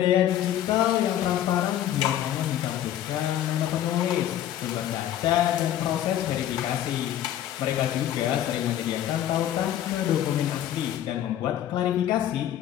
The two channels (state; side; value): quieter; right; 11.6 dB